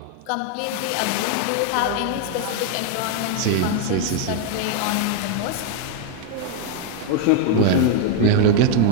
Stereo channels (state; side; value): different; both; correlation 0.01